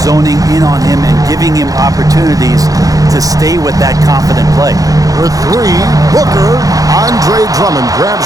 zoning in on him and giving him opportunities to stay with that confident play. For three, Booker. Andre Drummond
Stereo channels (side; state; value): left; late; 0.17 ms